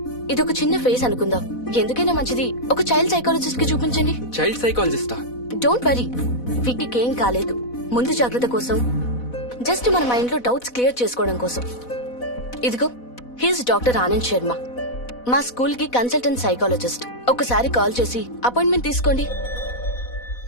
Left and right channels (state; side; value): late; right; 4.1 ms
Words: ఇదొక చిన్న ఫేస్ అనుకుందాం. ఎందుకైనా మంచిది ఒక చైల్డ్ సైకాలజిస్ట్ కి చూపించండి. చైల్డ్ సైకాలజిస్టా? డోంట్ వరీ, విక్కీకి ఏం కాలేదు. ముందు జాగ్రత్త కోసం, జస్ట్ మన మైండ్ లో డౌట్స్ క్లియర్ చేసుకోవడం కోసం. ఇదిగో, హీస్ డాక్టర్ ఆనంద్ శర్మ, మా స్కూల్ కి కన్సల్టెంట్ సైకాలజిస్ట్. ఒకసారి కాల్ చేసి అపాయింట్మెంట్ తీసుకోండి.